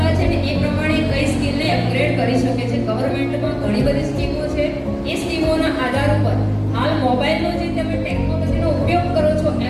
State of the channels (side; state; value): both; identical; correlation 1.00